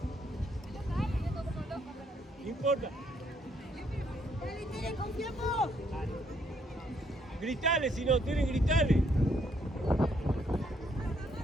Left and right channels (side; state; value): both; normal; correlation 0.71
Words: No importa. ¡Dale, Tere, confiamos! Gritale si no, Tere, gritale.